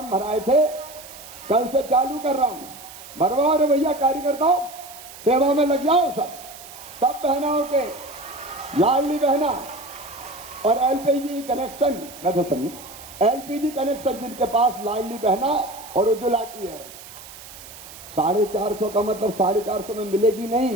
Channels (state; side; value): noise; right; hiss, 16 dB below the sound